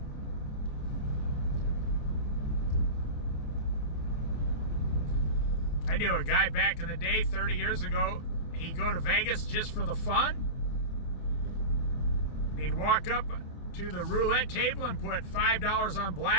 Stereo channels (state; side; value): late; right; 28 ms